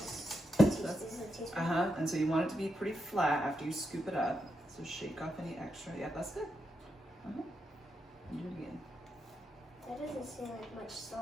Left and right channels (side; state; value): both; normal; correlation 0.84